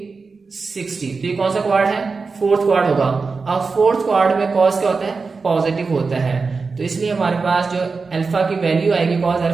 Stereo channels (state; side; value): quieter; left; 4.5 dB